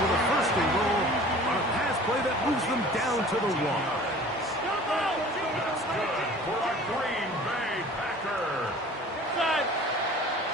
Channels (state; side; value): normal; both; correlation 0.45